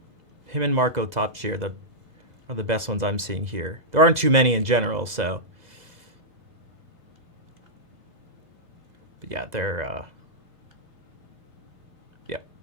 Him and Marco Topshi are the best ones I'm seeing here. There aren't too many in general, so. But yeah, they're yeah.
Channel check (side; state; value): left; late; 2.0 ms